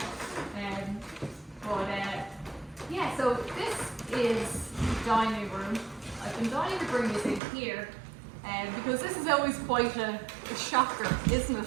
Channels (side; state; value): left; drops out; at 7.4 s